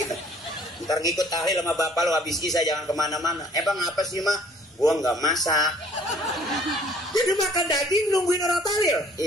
Ntar ngikut tahlil sama bapak lo, habis isya jangan kemana-mana. Bang apa sih mak? Gue nggak masak. Jadi makan daging nungguin orang tahlil?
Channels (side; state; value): both; normal; correlation 0.56